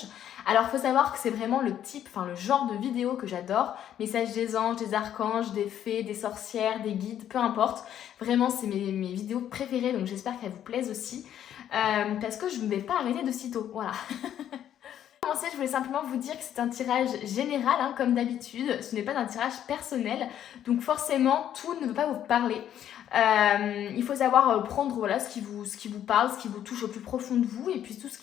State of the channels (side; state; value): right; quieter; 10.5 dB